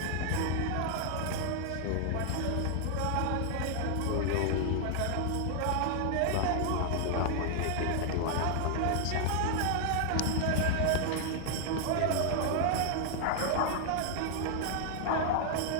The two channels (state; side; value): different; both; correlation 0.00